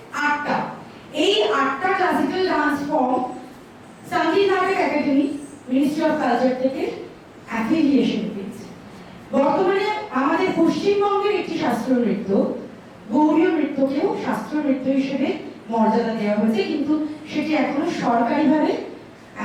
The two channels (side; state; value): both; identical; correlation 1.00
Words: 8টা। এই 8টা ক্লাসিক্যাল ডান্স ফর্ম সঙ্গীত নাটক একাডেমি, মিনিস্ট্রি অফ কালচার থেকে অ্যাফিলিয়েশন পেয়েছে। বর্তমানে আমাদের পশ্চিমবঙ্গের একটি শাস্ত্রীয় নৃত্য, গৌড়ীয় নৃত্যকেও শাস্ত্রীয় নৃত্য হিসেবে মর্যাদা দেওয়া হয়েছে, কিন্তু সেটি এখনো সরকারিভাবে